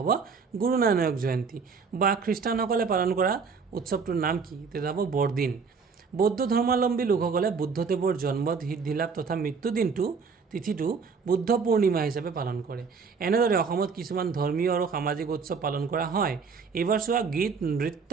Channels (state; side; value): quieter; left; 5.4 dB